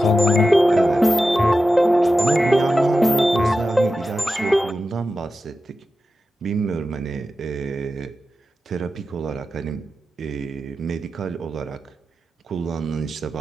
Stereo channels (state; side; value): normal; both; correlation 0.92